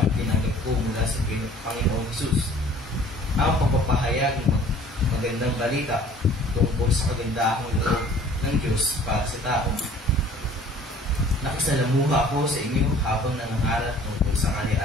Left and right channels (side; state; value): both; normal; correlation 0.52